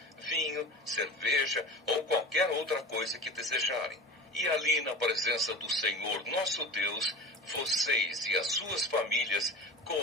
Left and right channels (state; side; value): normal; both; correlation 0.32